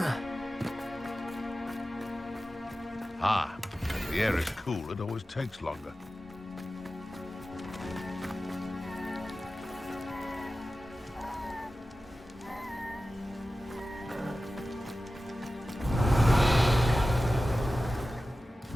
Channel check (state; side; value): normal; both; correlation 0.95